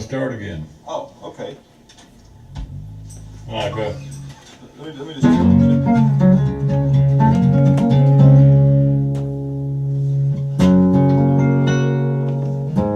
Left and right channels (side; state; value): both; identical; correlation 1.00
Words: again. Oh, okay. Like that. Let me just.